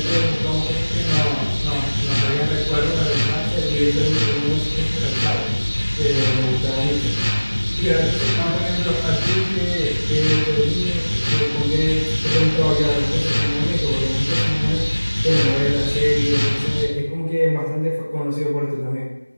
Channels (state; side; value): inverted; both; correlation -1.00